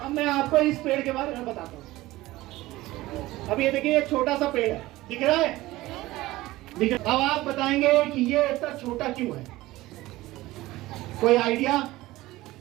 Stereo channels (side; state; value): left; quieter; 18.0 dB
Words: अब मैं आपको इस पेड़ के बारे में बताता हूँ। अब ये देखिए, ये छोटा सा पेड़ है, दिख रहा है? अब आप बताएंगे कि ये इतना छोटा क्यों है? कोई आइडिया?